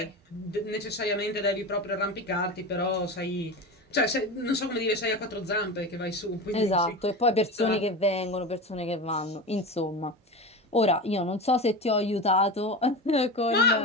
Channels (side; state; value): both; normal; correlation 0.26